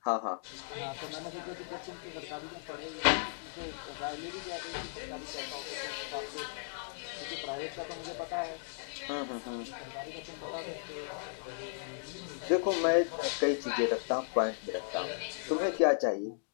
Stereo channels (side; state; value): right; silent; digital silence